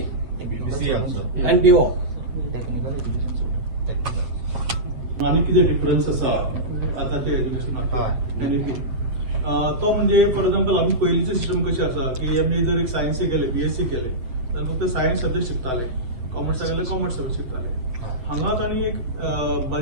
BC also. and BO. आनी कितें difference आसा आतांच्या एज्युकेशनाक NEP तो म्हणजे for example आमी पयलींचे system कशें आसा की आमी जर एक सायन्सी गेले BSc केले जाल्यार फक्त सायन्स सब्जेक्ट शिकताले, कॉमर्साक गेल्यार कॉमर्स सब्जेक्ट शिकताले. हांगा तांणी एक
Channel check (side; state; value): left; late; 7.9 ms